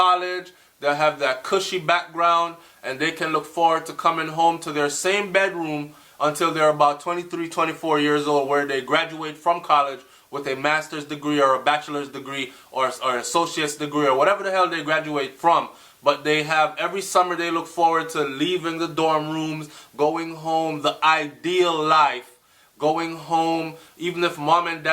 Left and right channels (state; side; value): identical; both; correlation 1.00